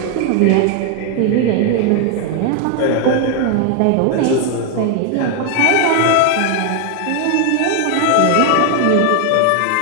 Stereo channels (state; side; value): different; both; correlation 0.00